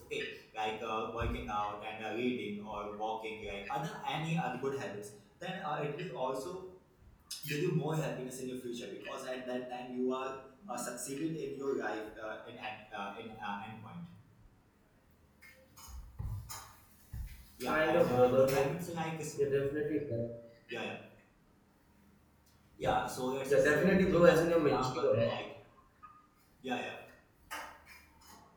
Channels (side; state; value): both; identical; correlation 1.00